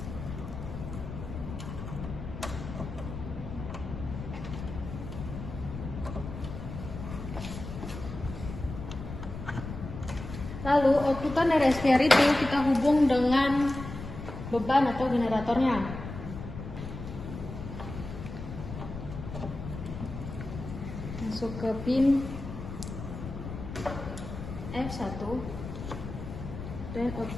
Lalu outputan dari SVR itu kita hubung dengan beban atau generatornya. Masuk ke pin F1 dan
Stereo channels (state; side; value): noise; left; rumble, 9 dB below the sound